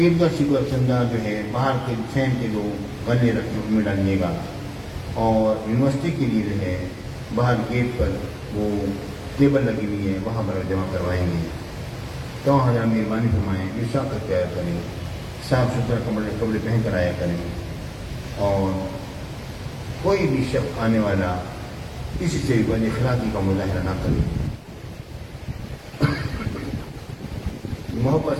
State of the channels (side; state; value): both; identical; correlation 1.00